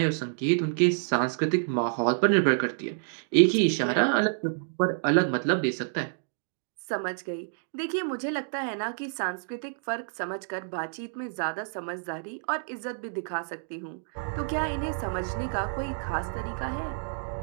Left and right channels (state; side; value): silent; left; digital silence